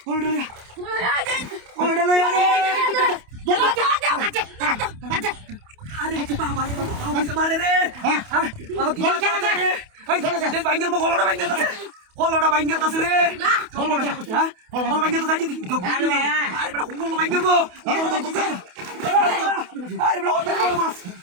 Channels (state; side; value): late; left; 28 ms